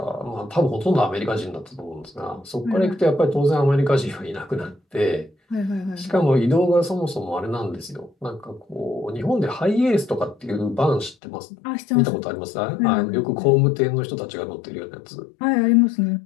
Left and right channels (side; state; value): right; drops out; at 11.2 s